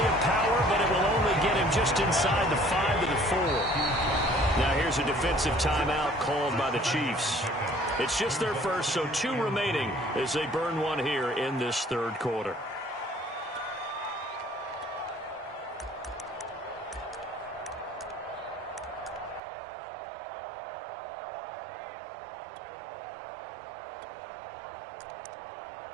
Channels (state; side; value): drops out; left; at 19.4 s